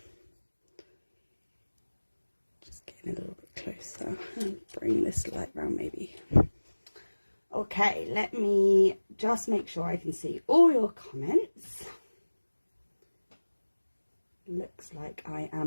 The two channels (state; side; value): inverted; both; correlation -1.00